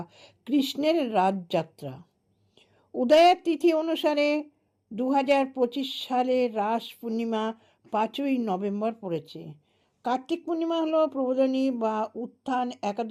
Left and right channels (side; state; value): both; identical; correlation 1.00